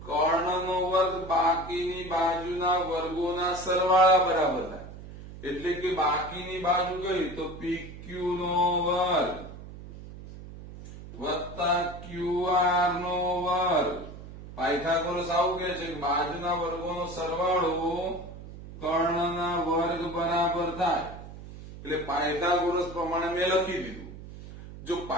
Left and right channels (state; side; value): noise; right; hum, 14 dB below the sound